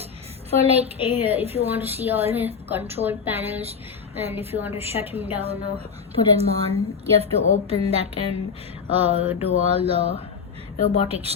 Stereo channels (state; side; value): quieter; right; 6.1 dB